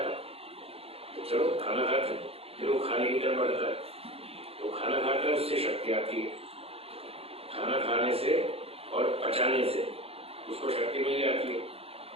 तो चलो खाना खाते। फिर वो खाने की तरफ बढ़ता है, तो खाना खाता है, उससे शक्ति आती है। खाना खाने से और पचाने से उसको शक्ति मिल जाती है।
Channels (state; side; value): late; left; 0.28 ms